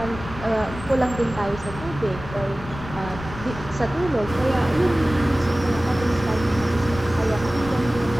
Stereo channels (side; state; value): left; noise; rumble, 12 dB below the sound